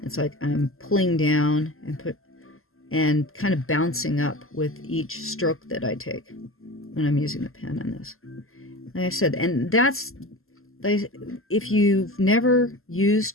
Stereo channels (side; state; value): right; late; 0.62 ms